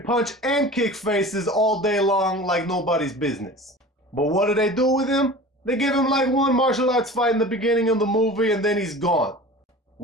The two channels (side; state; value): both; normal; correlation 0.38